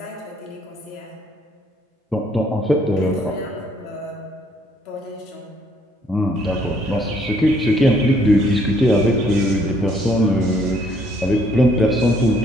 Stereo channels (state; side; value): normal; both; correlation 0.66